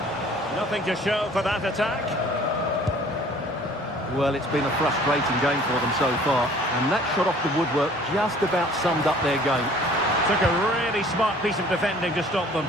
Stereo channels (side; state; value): both; normal; correlation 0.52